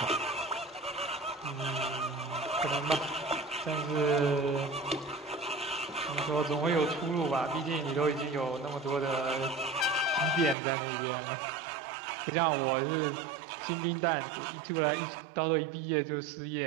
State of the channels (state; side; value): drops out; left; at 10.6 s